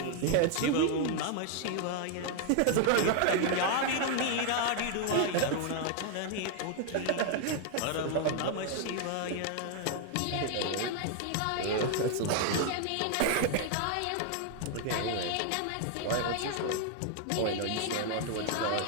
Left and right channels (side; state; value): both; different; correlation 0.00